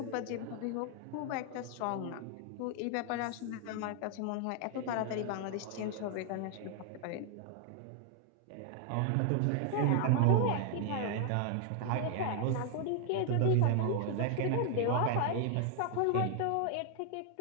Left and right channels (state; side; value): different; both; correlation 0.00